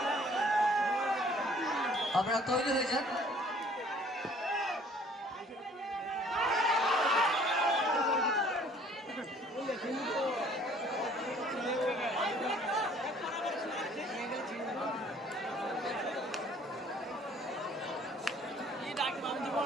আপনারা তৈরি হয়ে যান।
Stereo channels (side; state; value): both; normal; correlation 0.56